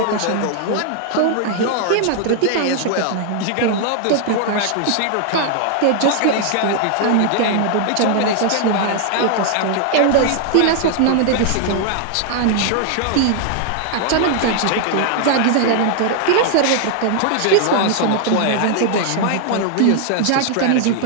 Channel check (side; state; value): both; different; correlation 0.00